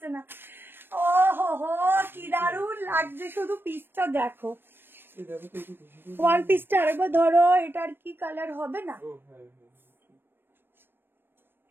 না। ও হো হো, কি দারুণ লাগছে, শুধু পিসটা দেখো। এই দেখো তো একটু দিশিতা। ওয়ান পিসটা আরেকবার ধরো, এটার কি কালার হবে না? ও হ্যাঁ হ্যাঁ ঠিক।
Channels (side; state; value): left; late; 0.099 ms